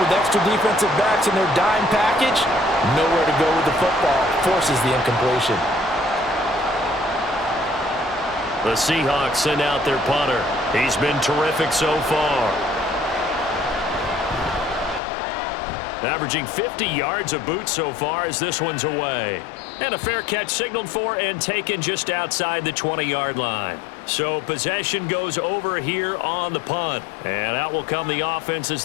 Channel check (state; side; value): drops out; right; at 15.0 s